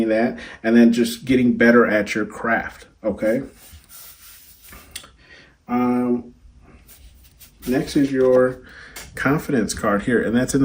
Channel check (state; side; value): identical; both; correlation 1.00